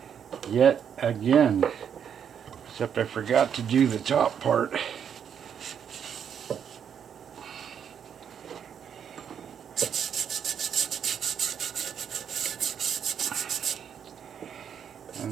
yet again, except I forgot to do the top part.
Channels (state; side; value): quieter; left; 8.1 dB